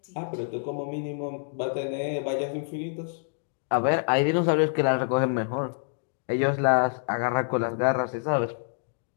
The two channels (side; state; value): right; silent; digital silence